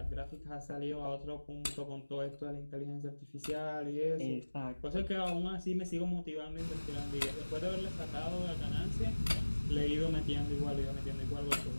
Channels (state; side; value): inverted; both; correlation -1.00